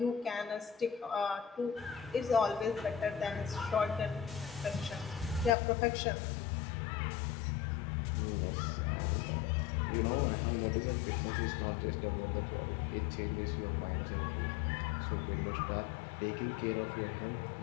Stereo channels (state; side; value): drops out; right; at 5.5 s